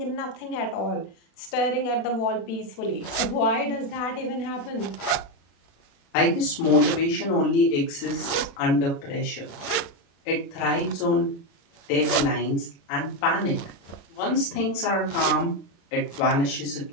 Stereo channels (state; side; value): late; right; 36 ms